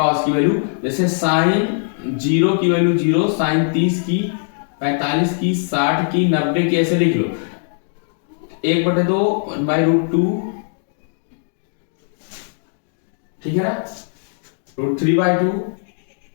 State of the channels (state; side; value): silent; right; digital silence